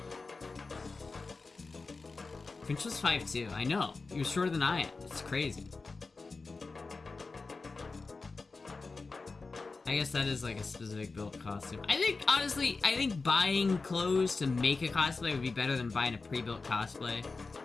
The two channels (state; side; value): quieter; right; 4.0 dB